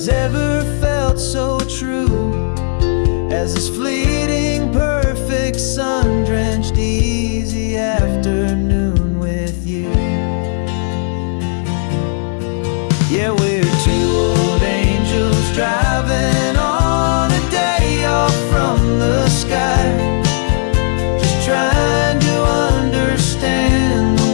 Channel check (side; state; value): right; silent; digital silence